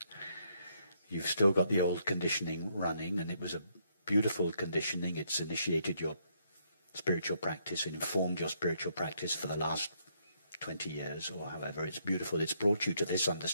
You've still got the old conditioning running, and it was a beautiful conditioning. It's initiated your spiritual practice and informed your spiritual practice for the last 20 years or however. It's beautiful. It's brought you to this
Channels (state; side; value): inverted; both; correlation -0.73